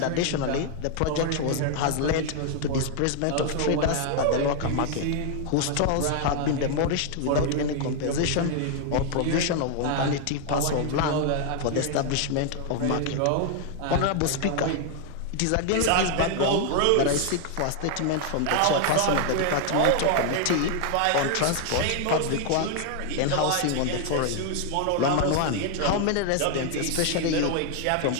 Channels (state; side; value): different; both; correlation 0.00